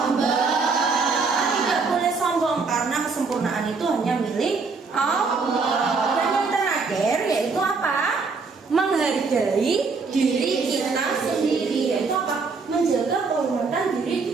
Tidak boleh sombong karena kesempurnaan itu hanya milik Allah. Dan yang terakhir yaitu apa? Menghargai diri kita sendiri. Yaitu apa? Menjaga kehormatan diri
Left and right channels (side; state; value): left; quieter; 4.5 dB